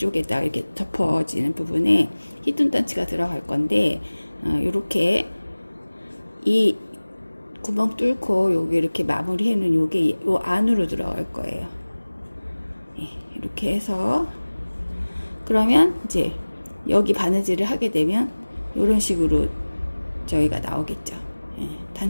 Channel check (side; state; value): both; inverted; correlation -1.00